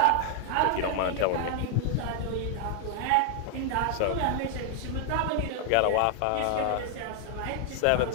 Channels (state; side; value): different; both; correlation 0.00